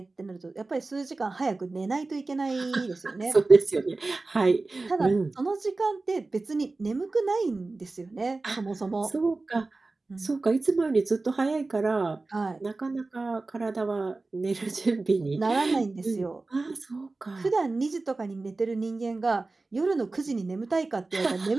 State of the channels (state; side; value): quieter; left; 3.4 dB